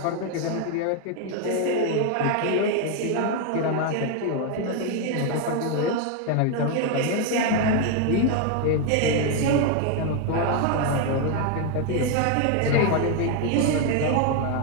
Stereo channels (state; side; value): different; both; correlation 0.01